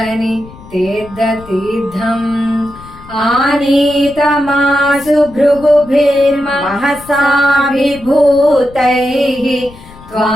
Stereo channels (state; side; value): noise; left; rumble, 20 dB below the sound